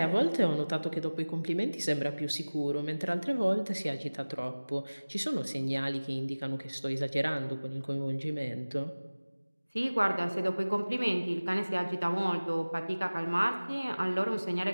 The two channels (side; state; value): both; inverted; correlation -1.00